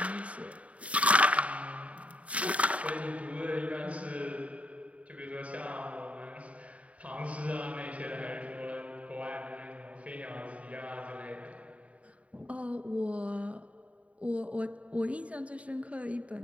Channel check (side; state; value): left; late; 0.066 ms